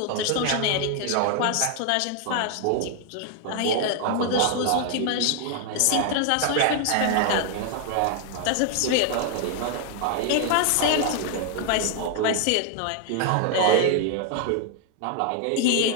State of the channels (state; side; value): different; both; correlation 0.00